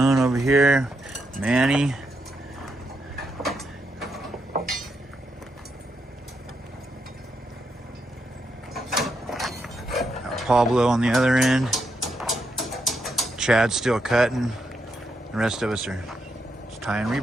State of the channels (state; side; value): normal; both; correlation 0.81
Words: over here, Manny. Got Pablo on the other end. Chad's still cutting. The rest of us are just tying